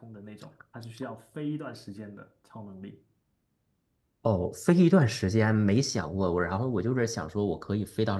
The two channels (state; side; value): identical; both; correlation 1.00